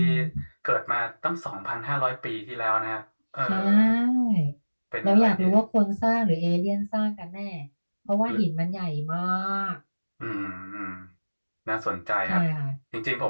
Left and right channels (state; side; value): inverted; both; correlation -1.00